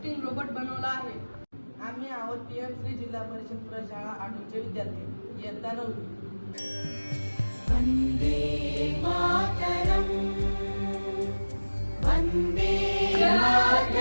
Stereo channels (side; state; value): both; inverted; correlation -1.00